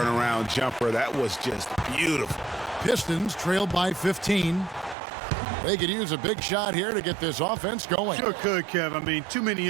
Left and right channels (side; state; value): left; drops out; at 5.0 s